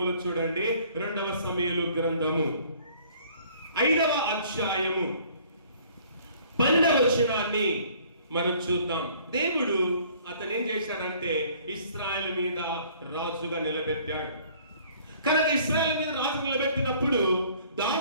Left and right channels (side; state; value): both; inverted; correlation -0.56